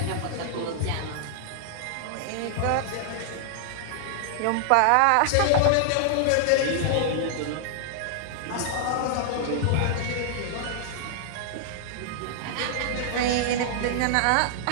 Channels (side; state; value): both; different; correlation -0.01